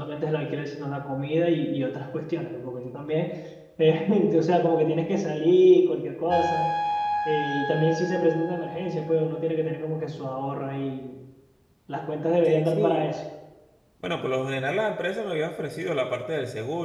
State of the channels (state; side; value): identical; both; correlation 1.00